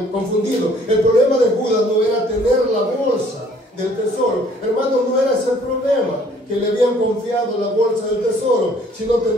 confundido. El problema de Judas no era tener la bolsa del tesoro. Hermanos, no era ese el problema, que le habían confiado la bolsa del tesoro, sino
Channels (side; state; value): both; normal; correlation 0.59